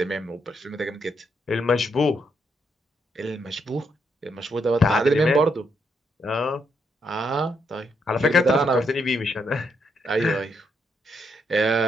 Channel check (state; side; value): normal; both; correlation 0.77